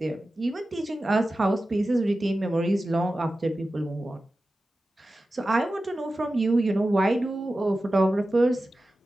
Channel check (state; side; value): normal; both; correlation 0.94